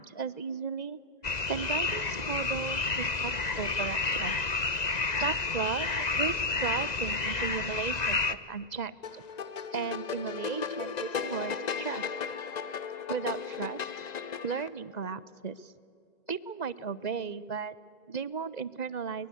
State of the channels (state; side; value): late; right; 2.0 ms